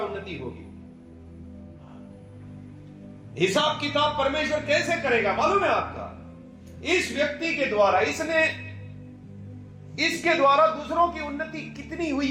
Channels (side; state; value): both; identical; correlation 1.00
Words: होगी। हिसाब किताब परमेश्वर कैसे करेगा मालूम है आपका? इस व्यक्ति के द्वारा, इसके द्वारा दूसरों की उन्नति कितनी